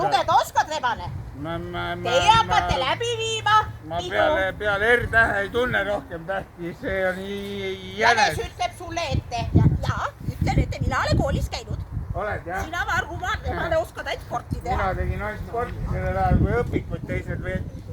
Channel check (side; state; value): both; identical; correlation 1.00